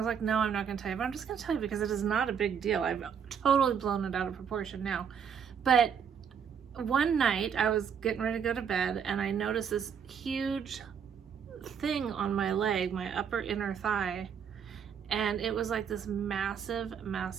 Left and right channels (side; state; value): left; quieter; 7.4 dB